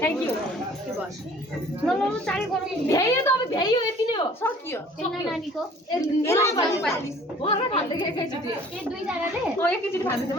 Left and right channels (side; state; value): both; normal; correlation 0.52